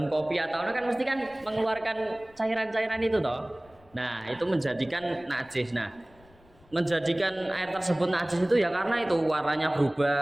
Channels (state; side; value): noise; left; rumble, 28 dB below the sound